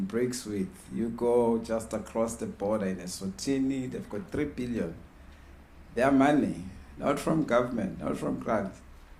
BRICS with. You go just across the border in Eswatini, they've got 3 billion. Their money, not from government, not from grants,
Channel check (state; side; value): identical; both; correlation 1.00